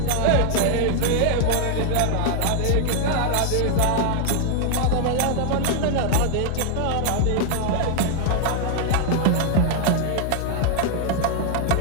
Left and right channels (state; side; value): different; both; correlation 0.00